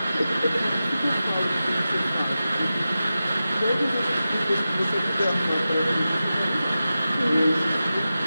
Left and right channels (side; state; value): both; inverted; correlation -0.93